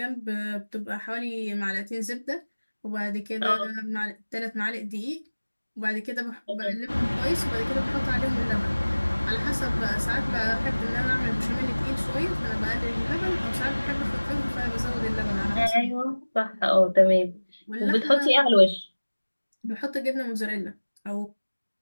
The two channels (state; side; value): inverted; both; correlation -1.00